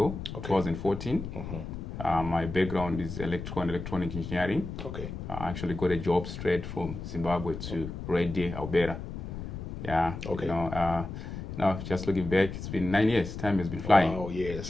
2014. My background is electrical and electronic engineering. Okay. I actually got a job straight from Zimbabwe to Harare, Alberta. Yeah. Okay. Now, just looking back, it's been 9 years. Time has been flying. Oh,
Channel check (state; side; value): noise; left; rumble, 8 dB below the sound